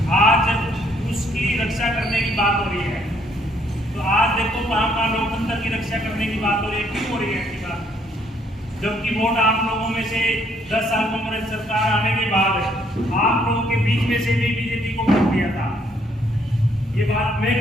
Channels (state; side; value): normal; both; correlation 0.68